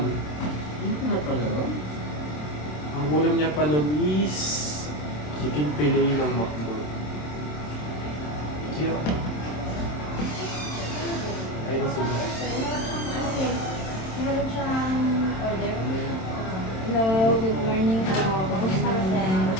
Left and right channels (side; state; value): right; late; 27 ms